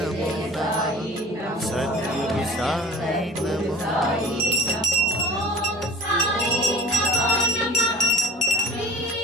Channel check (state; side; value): normal; both; correlation 0.41